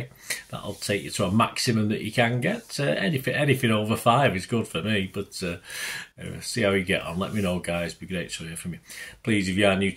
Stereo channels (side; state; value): both; identical; correlation 1.00